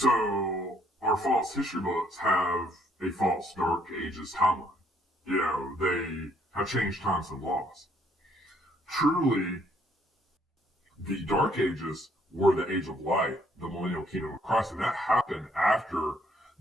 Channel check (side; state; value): both; normal; correlation 0.66